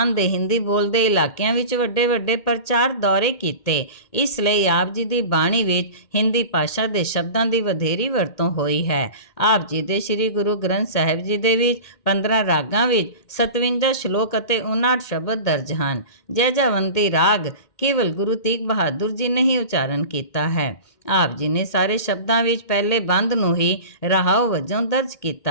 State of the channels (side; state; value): right; late; 2.1 ms